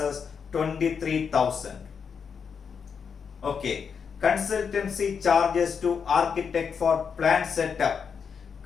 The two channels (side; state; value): right; quieter; 6.4 dB